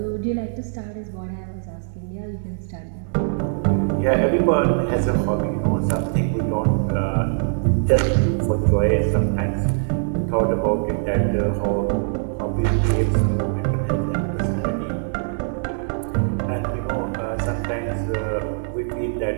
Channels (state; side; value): silent; left; digital silence